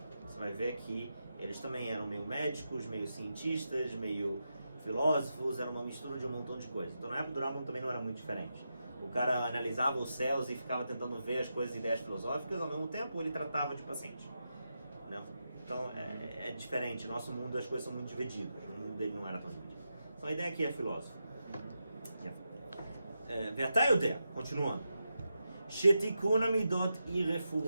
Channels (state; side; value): inverted; both; correlation -0.87